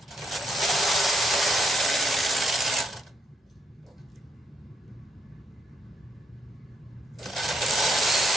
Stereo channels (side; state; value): both; normal; correlation 0.76